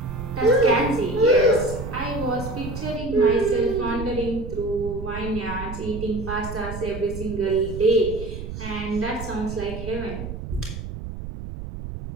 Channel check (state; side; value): noise; right; rumble, 8 dB below the sound